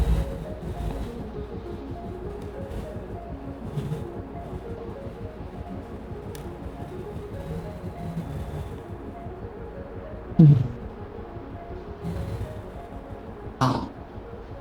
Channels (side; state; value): both; identical; correlation 1.00